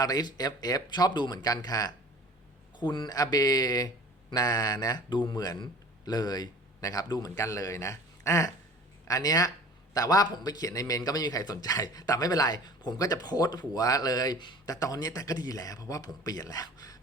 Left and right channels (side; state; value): both; normal; correlation 0.45